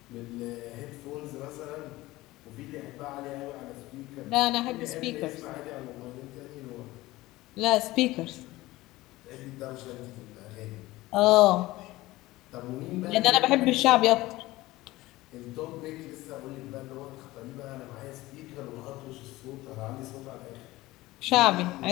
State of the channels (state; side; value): quieter; right; 18.6 dB